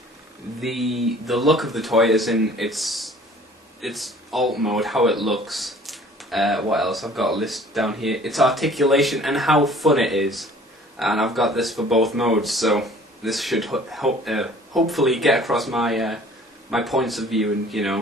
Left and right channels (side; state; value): both; normal; correlation 0.51